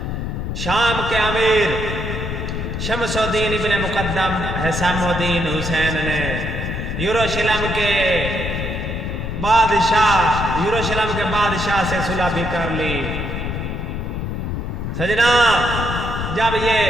شام کے امیر شمس الدین ابن مقدم حسام الدین حسین نے یروشلم کے بادشاہ سے صلح بھی کر لی۔ سجنا، جب یہ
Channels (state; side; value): noise; left; rumble, 4 dB below the sound